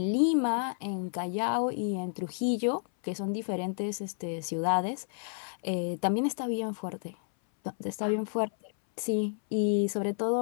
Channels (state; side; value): silent; right; 57 dB below the other